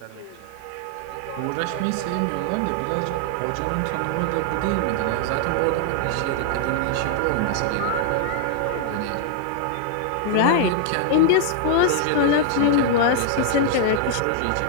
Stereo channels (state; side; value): different; both; correlation 0.00